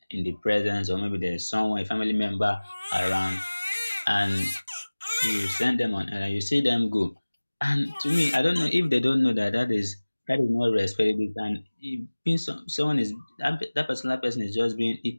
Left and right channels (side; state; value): both; inverted; correlation -1.00